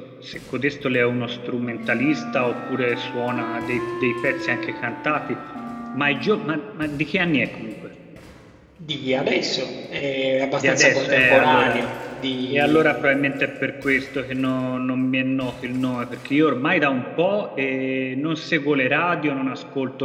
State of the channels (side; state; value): both; identical; correlation 1.00